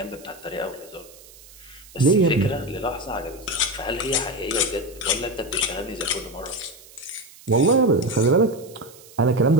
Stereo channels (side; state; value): right; noise; hiss, 22 dB below the sound